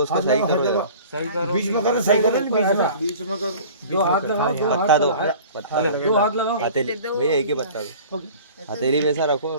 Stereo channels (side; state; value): both; inverted; correlation -0.44